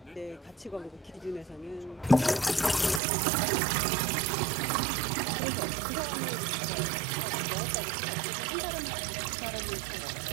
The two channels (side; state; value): left; drops out; at 3.0 s